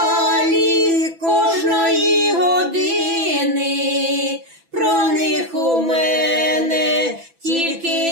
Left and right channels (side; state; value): left; late; 6.0 ms